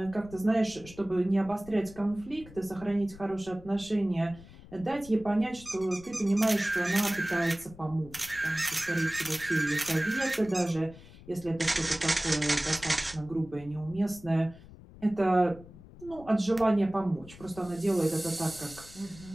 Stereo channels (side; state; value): left; noise; rumble, 19 dB below the sound